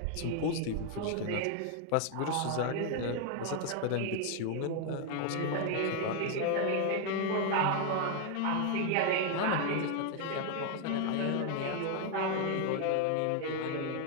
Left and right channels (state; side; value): different; both; correlation 0.00